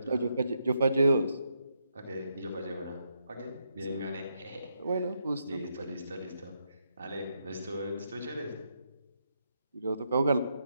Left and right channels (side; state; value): both; inverted; correlation -0.80